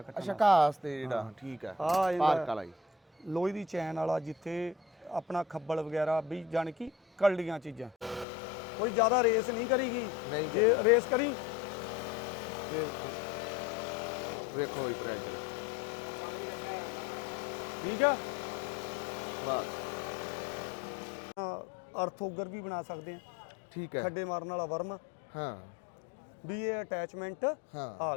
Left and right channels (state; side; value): drops out; right; at 8.2 s